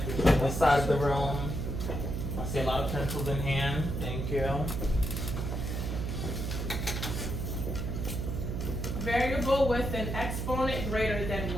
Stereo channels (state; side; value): noise; right; hum, 2 dB below the sound